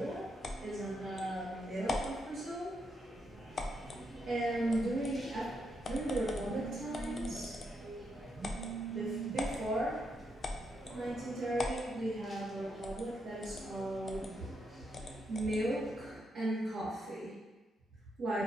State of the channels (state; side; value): normal; both; correlation 0.80